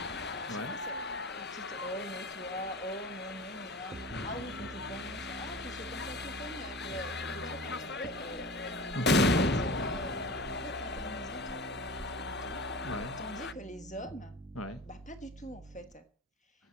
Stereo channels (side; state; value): both; normal; correlation 0.36